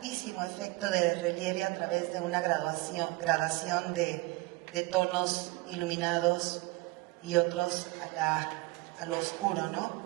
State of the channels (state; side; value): quieter; left; 22.3 dB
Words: efecto de relieve a través de una gradación de tonos iluminados y otros a lo oscuro, ¿no?